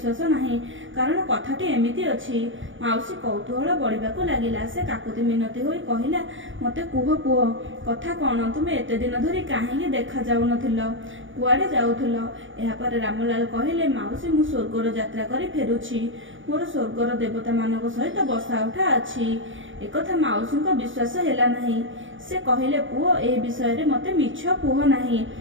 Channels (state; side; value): late; left; 0.56 ms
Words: ନାହିଁ, କାରଣ କଥାଟି ଏମିତି ଅଛି। ମାଉସୀ କୌତୂହଳ ବଢ଼ିବାକୁ ଲାଗିଲା। ସେ କାକୁତି ମିନତି ହୋଇ କହିଲା, ମୋତେ କୁହ ପୁଅ, କଥା କ'ଣ? ତୁମେ ଏତେ ଦିନ ଧରି କାହିଁକି ଦେଖାଯାଉନଥିଲ? କୁଆଡ଼େ ଯାଉଥିଲ? ଏହାପରେ ରାମଲାଲ କହିଲେ, ମାଉସୀ, ମୁଁ ସ୍ୱର୍ଗର ଯାତ୍ରା କରି ଫେରୁଛି। ମୋର ସ୍ୱର୍ଗର ଦେବତାମାନଙ୍କ ସହିତ ବସା ଉଠା ଅଛି। ଏକଥା ମାଉସୀଙ୍କ ବିଶ୍ୱାସ ହେଲା ନାହିଁ। ସେ କହିଲେ, ପୁଅ, ଏ ବିଷୟରେ ମୋତେ ମିଛ କୁହ ନାହିଁ।